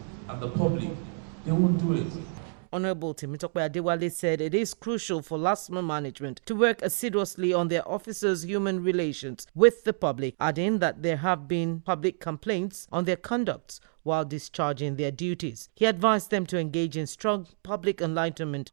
and the public, they won't do it. Honorable Temitope Adewale said it is crucial for LSHA management to work assiduously on their officers' human relations with the public, adding that there have been public complaints on their conduct while discharging their duties. He advised them to engage in strong public enlightenment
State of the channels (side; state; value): left; silent; 55 dB below the other